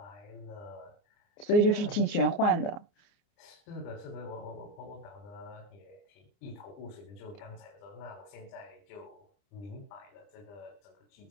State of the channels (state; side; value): late; right; 29 ms